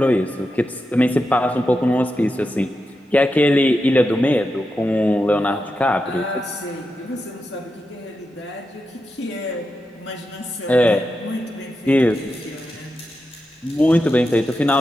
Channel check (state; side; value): normal; both; correlation 0.88